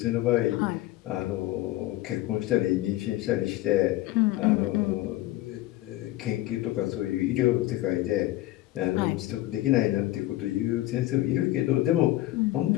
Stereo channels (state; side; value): quieter; right; 16.5 dB